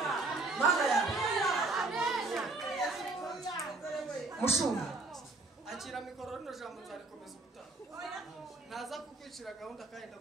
Mushumba, akira mikoro rino jambo nzarikomeza ubutaha. Naza kukwicira gahunda kandi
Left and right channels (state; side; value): quieter; left; 3.4 dB